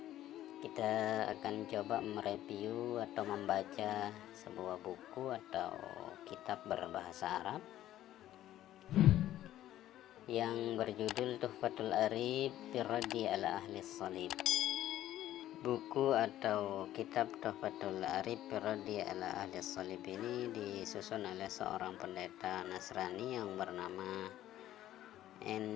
kita akan coba mereview atau membaca sebuah buku atau kitab berbahasa Arab yang berjudul Tuhfatul Arif fi Raddi ala Ahli Salib. Buku atau kitab Tuhfatul Arif fi Raddi ala Ahli Salib ini disusun oleh seorang pendeta Nasrani yang bernama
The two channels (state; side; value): quieter; right; 13.2 dB